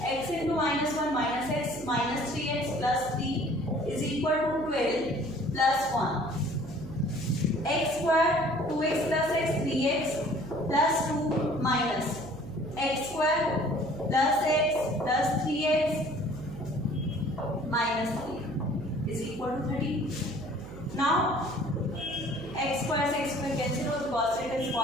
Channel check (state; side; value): noise; right; hum, 13 dB below the sound